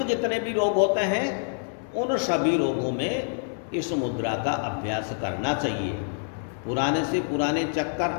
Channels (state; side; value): silent; right; digital silence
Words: जितने भी रोग होते हैं उन सभी रोगों में इस मुद्रा का अभ्यास करना चाहिए। पुराने से पुराने चक्कर